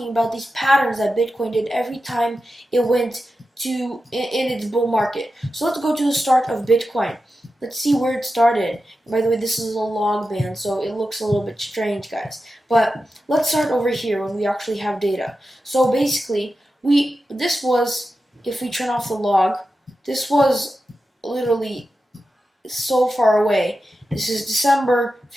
about these patterns that Bitcoin did every time it went in its bull market. So let's go to the start of Bitcoin. Let's see where it started. By the way, this is a log band, so it looks a little bit strange, guys. But let's start over here when we actually have data. So basically, this was, if we turn off the log, this was literally so far away. This is December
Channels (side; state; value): both; normal; correlation 0.91